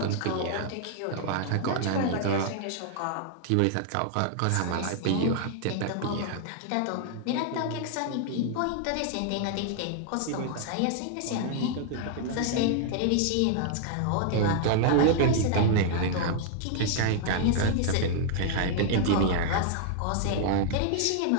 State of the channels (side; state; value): both; different; correlation -0.01